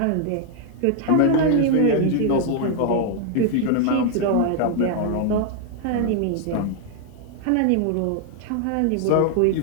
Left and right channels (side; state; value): both; different; correlation 0.00